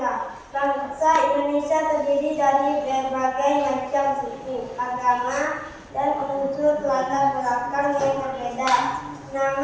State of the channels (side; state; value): both; identical; correlation 1.00